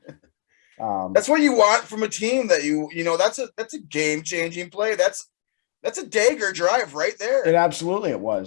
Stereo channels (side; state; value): right; silent; digital silence